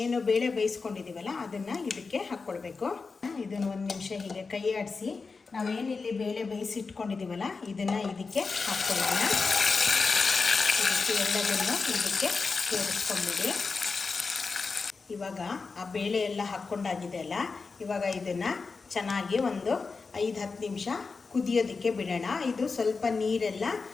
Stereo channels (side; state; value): right; quieter; 4.5 dB